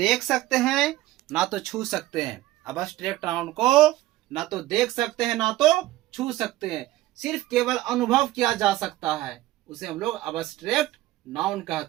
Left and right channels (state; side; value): quieter; left; 16.3 dB